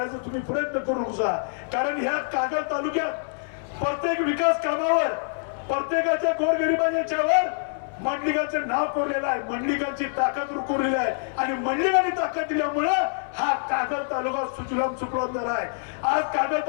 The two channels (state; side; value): silent; right; 61 dB below the other